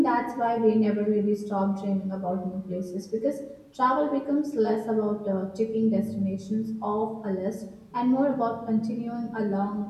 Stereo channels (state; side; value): identical; both; correlation 1.00